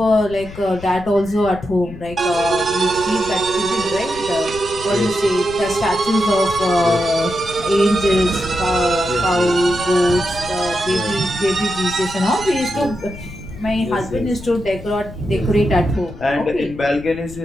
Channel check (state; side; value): noise; left; rumble, 15 dB below the sound